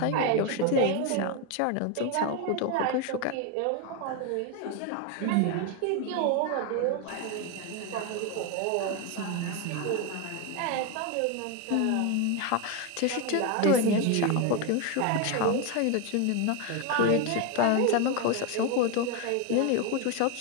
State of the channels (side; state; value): both; different; correlation 0.02